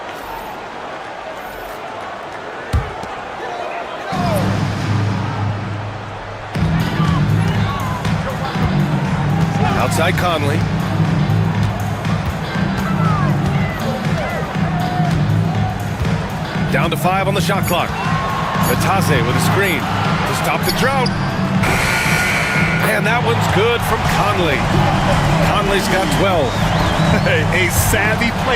Outside Conley. Down to 5 on the shot clock. Batase with a screen to stop the drought. And that one's good from Conley. Conley's got 12. A savvy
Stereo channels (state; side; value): identical; both; correlation 1.00